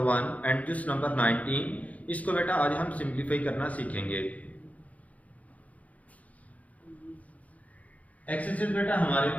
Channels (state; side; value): late; right; 0.070 ms